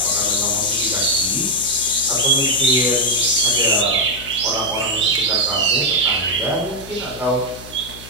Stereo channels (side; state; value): left; noise; hum, 18 dB below the sound